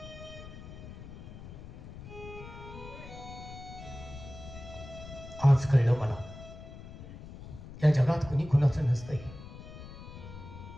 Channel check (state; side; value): noise; left; rumble, 13 dB below the sound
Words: आज कळलं मला, या जगात कुणी कुणाचं नसतंय.